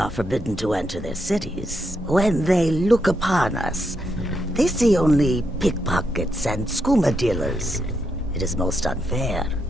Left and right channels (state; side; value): normal; both; correlation 0.81